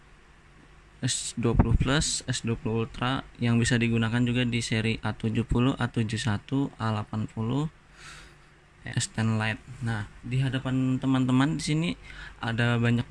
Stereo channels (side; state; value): both; identical; correlation 1.00